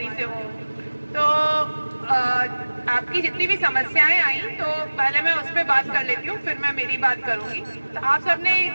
से हूँ। तो आपकी जितनी भी समस्याएं आई तो पहले मैं उस पर बात कर लेती हूँ, फिर मैं मेरी बात करूंगी। तो आप सबने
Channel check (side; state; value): both; inverted; correlation -1.00